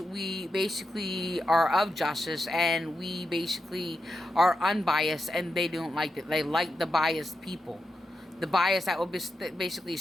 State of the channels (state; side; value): normal; both; correlation 0.87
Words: we basically are of justice, and we basically are unbiased, and they don't like it. They like the biased people. The bias that will basically